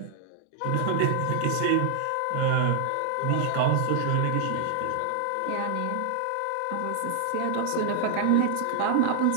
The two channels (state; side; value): different; both; correlation 0.00